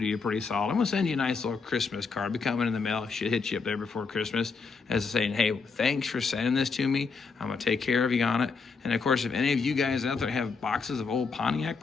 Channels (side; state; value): right; quieter; 4.8 dB